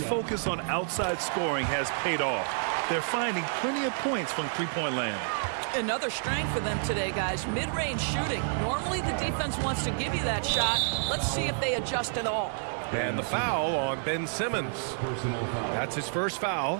on outside scoring has paid off. They're finding plenty of points from three-point land. Another strength for them today, guys. Mid-range shooting. Normally the defense wants to give you that shot. Let's see if they adjust at all. And the foul on Ben Simmons. That's his first foul.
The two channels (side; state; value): left; silent; digital silence